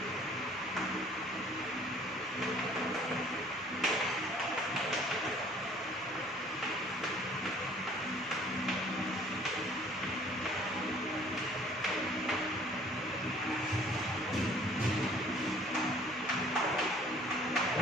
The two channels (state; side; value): normal; both; correlation 0.55